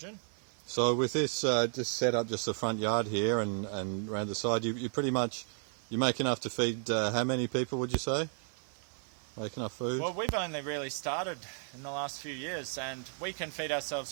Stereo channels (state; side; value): silent; left; 55 dB below the other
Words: So with this just set up just the front yard here and around the side, you pretty much, you make enough to feed how many people, would you say? Make enough food? Well, we've only really started in the last few years, and we can feed ourselves